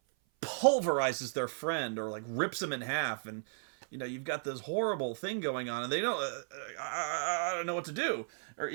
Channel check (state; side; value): silent; left; 55 dB below the other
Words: pulverizes their friend or like rips him in half, and you've got this horrible thing going on, and they don't. I don't know what to do. Or